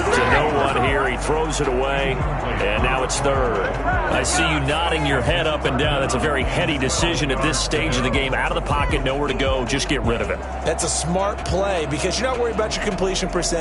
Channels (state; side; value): identical; both; correlation 1.00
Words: no one here. He throws it away. And now it's 3rd. I see you nodding your head up and down. That's a very heady decision at this stage of the game. Out of the pocket, nowhere to go. Just get rid of it. That's a smart play because you're not worried about your completion